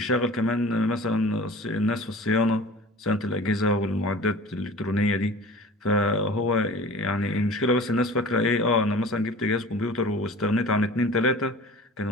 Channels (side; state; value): both; normal; correlation 0.41